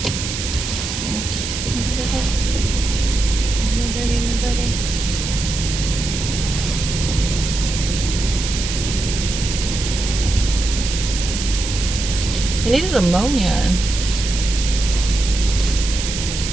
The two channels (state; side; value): noise; right; hiss, 5 dB below the sound